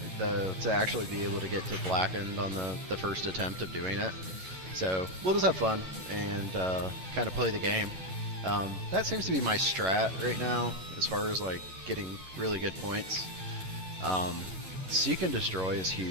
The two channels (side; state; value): left; late; 11 ms